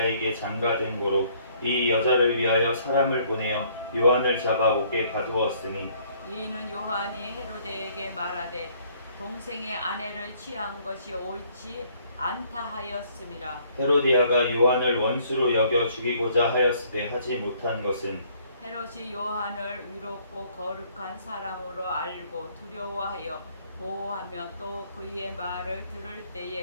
장가든 고로 이 여자를 위하여 사람을 보내어 요한을 잡아 옥에 가두었으니 이는 요한이 헤로데에게 말하되 동생의 아내를 취한 것이 옳지 않다 하였음이라. 헤로디아가 요한을 원수로 여겨 죽이고자 하였으되 하지 못한 것은 헤롯이 요한을 위롭고 거룩한 사람으로 알고 두려워하여 보호하며 또 그의 말을 들을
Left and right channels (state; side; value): inverted; both; correlation -0.62